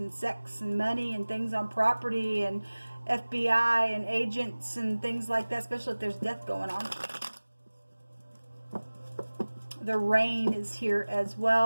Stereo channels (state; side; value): inverted; both; correlation -1.00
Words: sex and money and things on property and FBI and agents and things like that, especially if there's death going on. The rain is here as